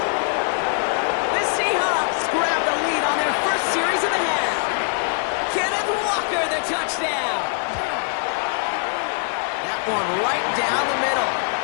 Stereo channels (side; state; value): right; silent; 59 dB below the other